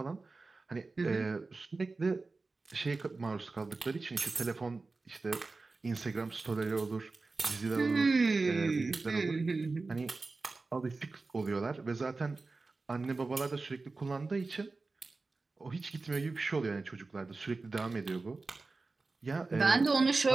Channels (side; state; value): left; quieter; 3.7 dB